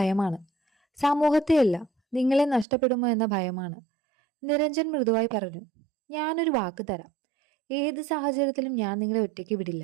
സമൂഹത്തെയല്ല, നിങ്ങളെ നഷ്ടപ്പെടുമോ എന്ന ഭയമാണ്. നിരഞ്ജൻ മൃദുവായി പറഞ്ഞു. ഞാനൊരു വാക്ക് തരാം. ഏത് സാഹചര്യത്തിലും ഞാൻ നിങ്ങളെ ഒറ്റയ്ക്ക്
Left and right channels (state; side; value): drops out; left; at 2.7 s